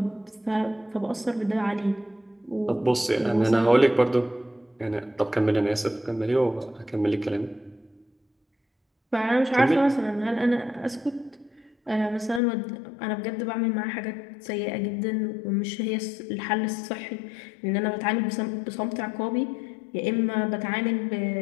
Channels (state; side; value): drops out; right; at 12.4 s